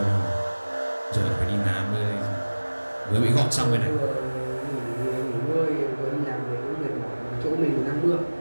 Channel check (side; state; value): both; inverted; correlation -1.00